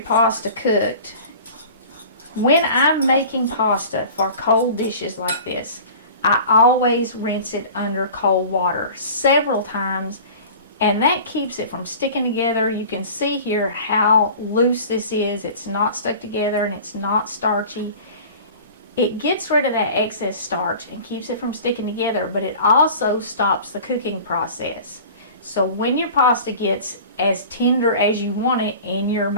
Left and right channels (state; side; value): inverted; both; correlation -0.41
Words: pasta cooked, when I'm making pasta for cold dishes like this, I always rinse it under cold water several times, and that keeps it from sticking together. You can see here how loose this is. It's not stuck together and it's not starchy. It gets rid of that excess starch and keeps it from sticking together, but it also stops the cooking process. So when your pasta gets as tender as you want it in your